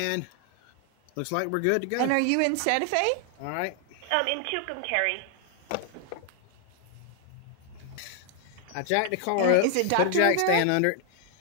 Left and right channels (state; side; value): different; both; correlation 0.00